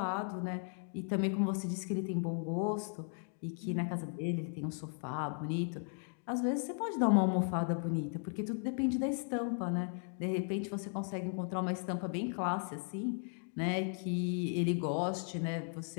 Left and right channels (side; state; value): right; silent; 54 dB below the other